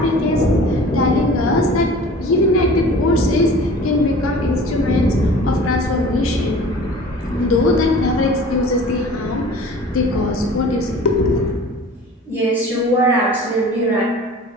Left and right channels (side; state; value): both; normal; correlation 0.43